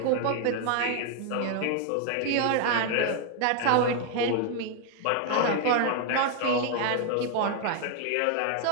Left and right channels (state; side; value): different; both; correlation 0.00